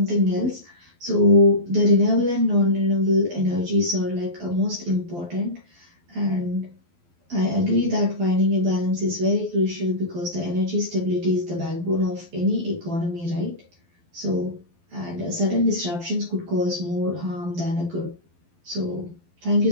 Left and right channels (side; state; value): left; late; 12 ms